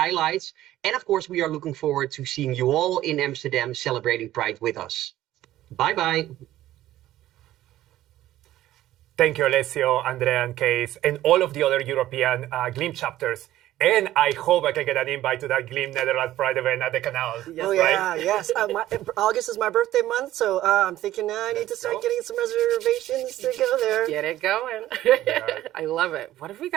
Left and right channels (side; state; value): left; quieter; 14.2 dB